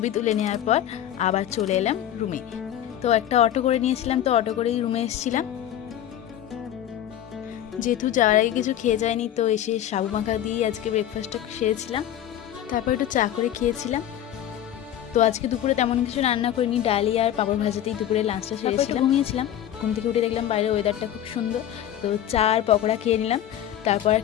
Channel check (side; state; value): right; quieter; 11.2 dB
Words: তুলে নেওয়ার পর আবার চলে এলাম রুমে। তো একটা অটো করে নিয়েছিলাম, তো অটো করেই রুমে এসেছিলাম। যেহেতু যাওয়ার আগে কিছু খেয়ে যায়নি, তো এসে সাবু মাখা দিয়েই আজকে ব্রেকফাস্টটা সেরেছিলাম। তারপর একটু চা করে খেয়েছিলাম। তো আজকে দুপুরে তেমন কিছু রান্না করিনি, ডালি আর পাঁপড় ভাজাতেই দুপুরে লাঞ্চটা সেরেছিলাম। ঘুমিয়েছিলাম, ঘুম থেকে উঠে দেখলাম বাইরে ওয়েদারটা খুব সুন্দর, তো চা আর পকোড়া খেয়ে নিলাম। তারপর